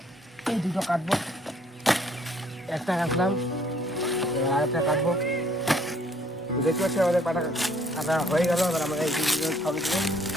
এই দুটো কাটবো, একটা কাটলাম আর একটা কাটবো। দেখতে পাচ্ছি আমাদের কাটা হয়ে গেল। এবার আমরা এই দুটো খাবো,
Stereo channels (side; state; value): both; normal; correlation 0.63